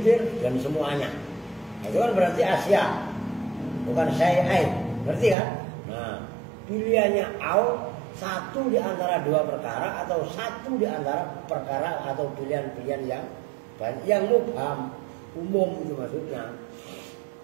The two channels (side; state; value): left; drops out; at 5.4 s